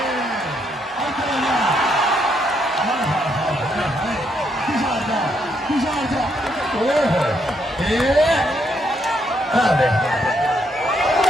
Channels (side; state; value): both; normal; correlation 0.75